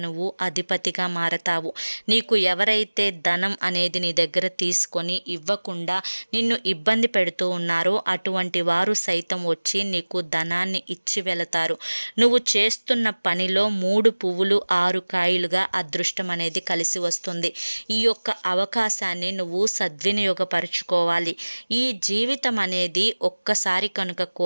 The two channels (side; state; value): both; inverted; correlation -1.00